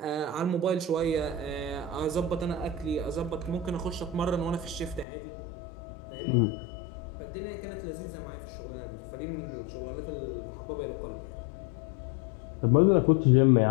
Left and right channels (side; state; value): right; drops out; at 5.1 s